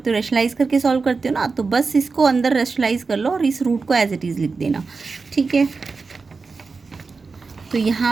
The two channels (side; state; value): left; quieter; 4.4 dB